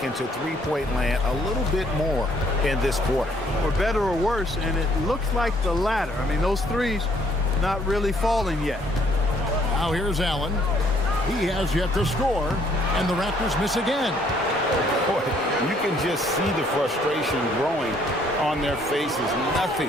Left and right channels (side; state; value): both; normal; correlation 0.65